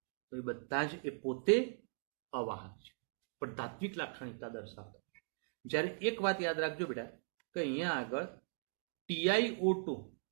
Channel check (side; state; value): left; silent; digital silence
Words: તો એ બધા જ એ પોતે અવાહક છે પણ ધાત્વિક લાક્ષણિકતા દર્શાવતા છે. જ્યારે એક વાત યાદ રાખજો બેટા કે અહીંયા આગળ TiO2